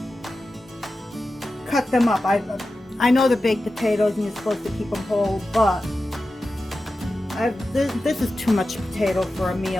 cut them up. I know they're baked potatoes and you're supposed to keep them whole, but this is too much potato for a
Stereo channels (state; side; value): normal; both; correlation 0.93